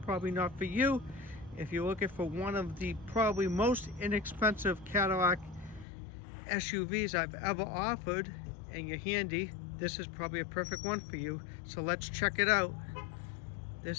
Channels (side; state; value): right; drops out; at 5.9 s